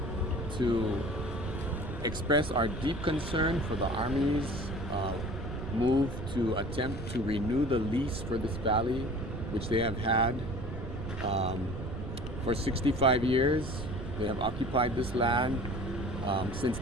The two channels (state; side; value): noise; right; rumble, 7 dB below the sound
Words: to express our deep concern for the Army's move to attempt to renew the lease for this valley, which they have had for 65 years. They have occupied this land since